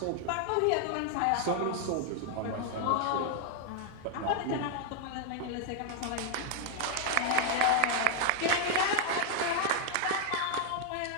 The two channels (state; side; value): different; both; correlation 0.00